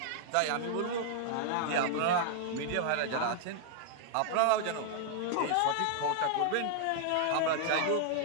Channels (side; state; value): both; different; correlation -0.01